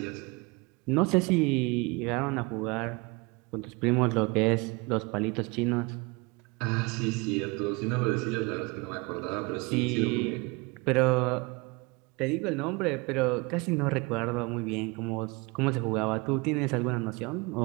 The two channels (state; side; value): quieter; left; 26.9 dB